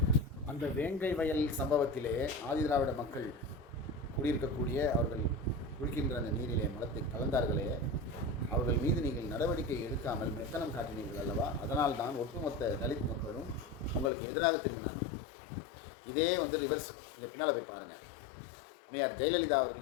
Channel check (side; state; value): right; drops out; at 14.1 s